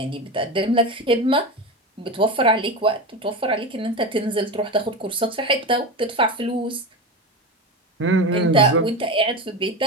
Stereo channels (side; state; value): both; normal; correlation 0.22